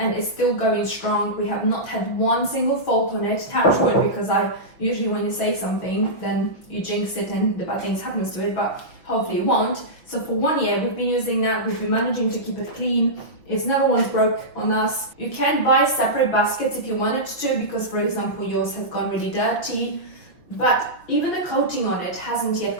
it's still going strong. We have not had one single fault on it, touch wood, because I usually when you say something then you jinx it and the bad things happens to it, but hopefully it won't. So for 1 year we've been using that, we've been managing to keep it clean. It's never once broke on us. You can buy separate baskets if you wanted to, because for example yours have gone really dirty, but even the coating on it hasn't yet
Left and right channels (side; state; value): right; late; 6.0 ms